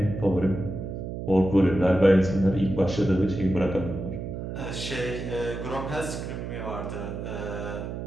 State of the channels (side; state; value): right; noise; hum, 6 dB below the sound